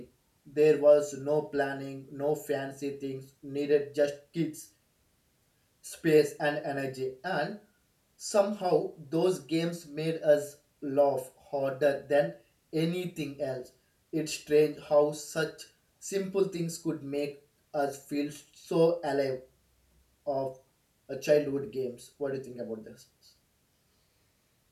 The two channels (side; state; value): both; identical; correlation 1.00